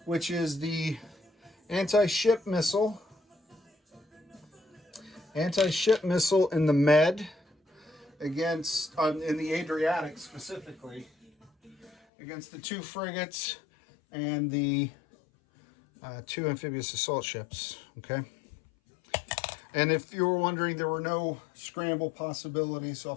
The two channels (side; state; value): right; drops out; at 12.0 s